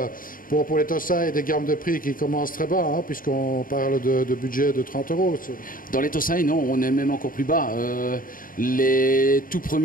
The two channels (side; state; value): right; late; 0.40 ms